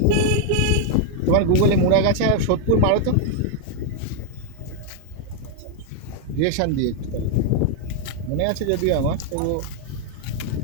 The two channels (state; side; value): different; both; correlation 0.00